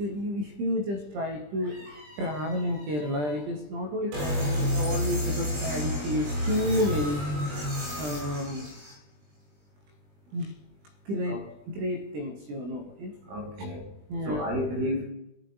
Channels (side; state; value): left; late; 20 ms